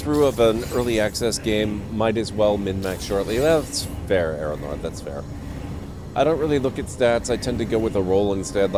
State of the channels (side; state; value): both; identical; correlation 1.00